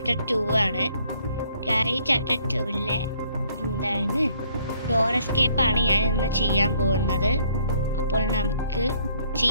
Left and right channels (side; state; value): both; inverted; correlation -0.64